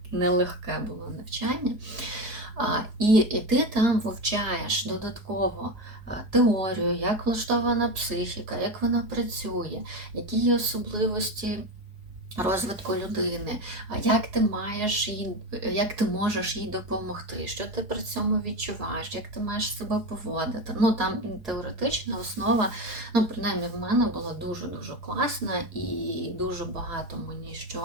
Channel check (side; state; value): left; late; 4.8 ms